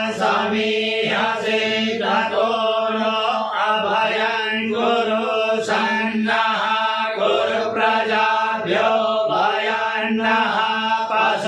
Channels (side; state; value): both; identical; correlation 1.00